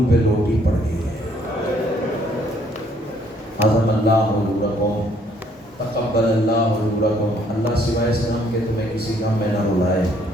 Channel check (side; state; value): both; normal; correlation 0.65